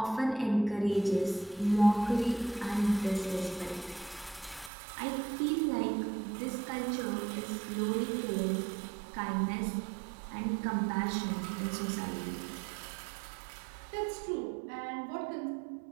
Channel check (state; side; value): drops out; left; at 4.7 s